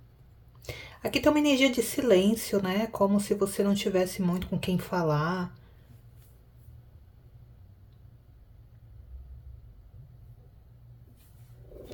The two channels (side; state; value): both; identical; correlation 1.00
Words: Aqui tem uma energia de silêncio, né? Como se você não tivesse muito com quem falar.